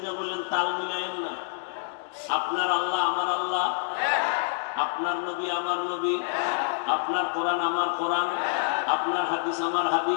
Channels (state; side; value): silent; right; digital silence